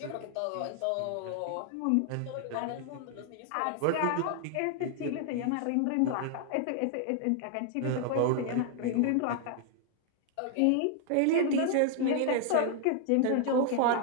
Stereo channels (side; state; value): both; different; correlation 0.00